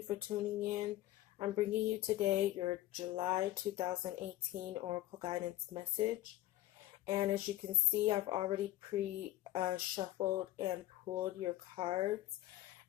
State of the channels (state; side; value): quieter; right; 15.4 dB